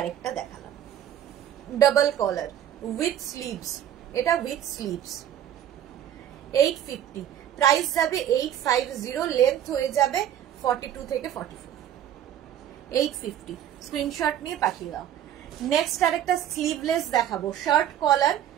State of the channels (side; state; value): left; quieter; 10.8 dB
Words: দেখালাম ডাবল কলার উইথ স্লিভস, এটা উইথ স্লিভস। 850, প্রাইস যাবে 850, লেন্থ হয়ে যাবে 42 থেকে 44। 850, স্ক্রিনশট নিয়ে পাঠিয়ে দাও। নেক্সট আরেকটা স্লিভলেস দেখাবো, শার্ট কলার